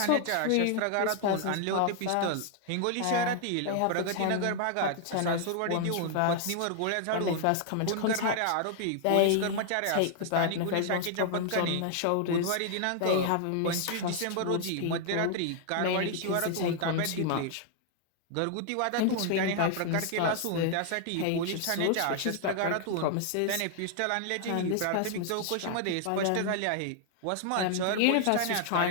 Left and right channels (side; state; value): both; different; correlation 0.00